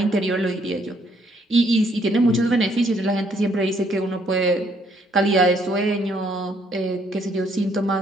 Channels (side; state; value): both; normal; correlation 0.68